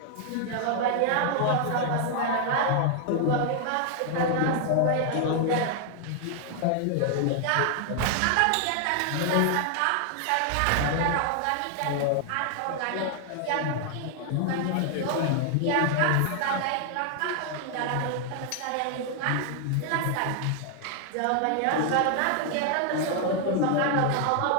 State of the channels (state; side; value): different; both; correlation 0.00